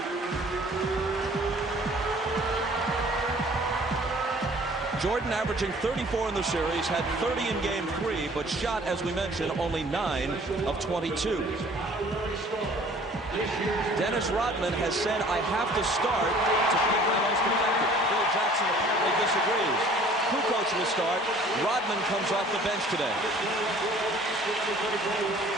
Jordan averaging 34 in the series, had 30 in Game 3, but shot, as we mentioned, only 9 of 22. Dennis Rodman has said, I have to start to be my most effective. Phil Jackson apparently disagrees. Kukoc will start. Rodman comes off the bench today.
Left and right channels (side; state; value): both; normal; correlation 0.52